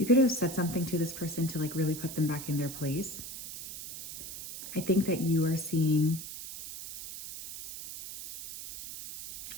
could have said something to this person to really put them back in their place. I think that you are seeing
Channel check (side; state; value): right; noise; hiss, 10 dB below the sound